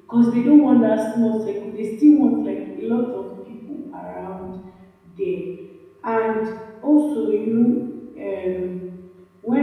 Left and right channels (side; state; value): both; identical; correlation 1.00